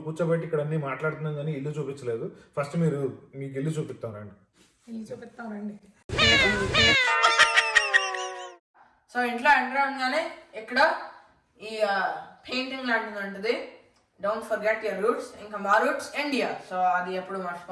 కూర్చోబెట్టి ఇక్కడ అన్ని మాట్లాడుతున్నాం కానీ ఇల్లు చూపించలేదు. ఫస్ట్ మీకు ఇల్లు చూపిస్తానండి. సో ఇంట్లో ఎంటర్ అవగానే ఇక్కడ ఈ పెయింటింగ్ లాంటిది ఉంటుంది, డోంట్ ఫర్గెట్ యువర్ రూట్స్. ఇంకా మా రూట్స్ ఇండియా, సో అది ఎప్పుడు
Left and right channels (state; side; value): identical; both; correlation 1.00